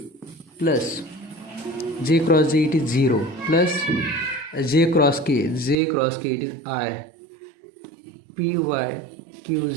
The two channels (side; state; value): left; drops out; at 5.8 s